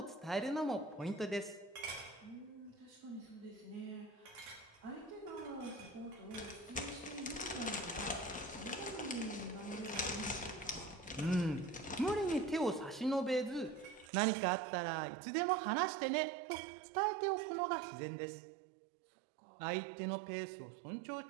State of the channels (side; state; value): left; drops out; at 14.1 s